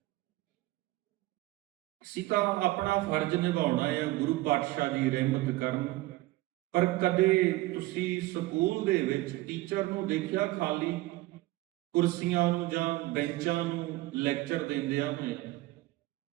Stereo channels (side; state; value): left; quieter; 18.5 dB